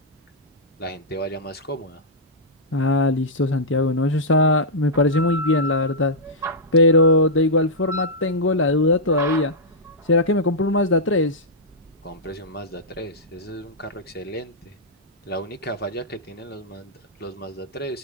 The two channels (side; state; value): both; normal; correlation -0.09